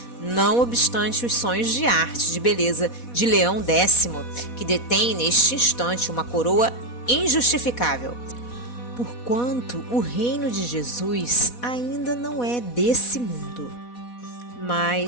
não obstante os sonhos de arte e de beleza de Leão X, que detém neste instante uma coroa injustificável, porquanto o reino de Jesus ainda não é desse mundo.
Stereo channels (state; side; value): late; right; 4.1 ms